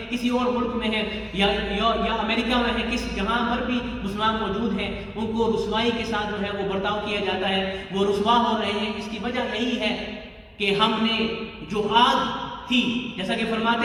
کسی اور ملک میں ہیں، یا امریکہ میں ہیں، جہاں پر بھی مسلمان موجود ہیں، ان کو رسوائی کے ساتھ جو ہے وہ برتاؤ کیا جاتا ہے، وہ رسوا ہو رہے ہیں. اس کی وجہ یہی ہے کہ ہم نے جو آگ تھی، جیسا کہ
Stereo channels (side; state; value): both; identical; correlation 1.00